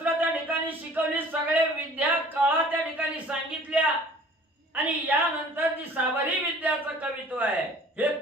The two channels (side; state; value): both; normal; correlation 0.49